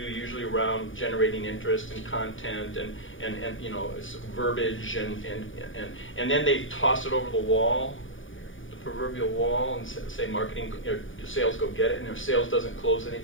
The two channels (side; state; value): right; late; 0.57 ms